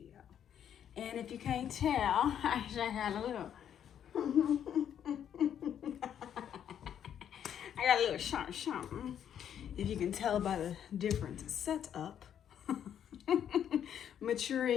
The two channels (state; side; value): quieter; right; 9.3 dB